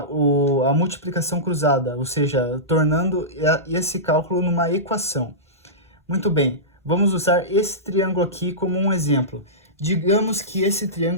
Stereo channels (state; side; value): normal; both; correlation -0.17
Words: multiplicação cruzada, ou seja, tornando esse cálculo numa equação. Muito bem, vamos usar esse triângulo aqui como um exemplo. Digamos que esse